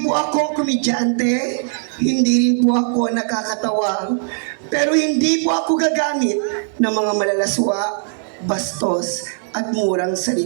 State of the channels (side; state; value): left; silent; 62 dB below the other